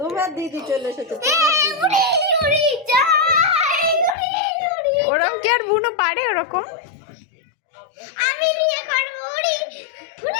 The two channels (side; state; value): right; drops out; at 4.2 s